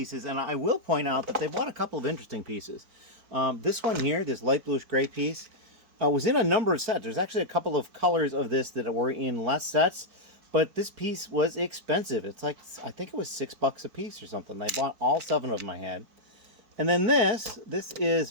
and I will point out that they bought a couple of interesting pieces. This one here, this light bluish gray piece, was in a number of sets. There's actually a couple of colors of this that were in less sets, but this piece was expensive. It's like, I think it was $6 a piece or something. I bought all 7 of them I had. And then this is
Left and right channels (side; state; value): left; late; 4.6 ms